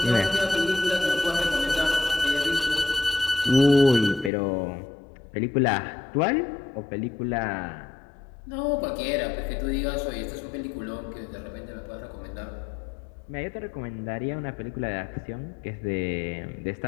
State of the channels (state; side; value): drops out; right; at 4.3 s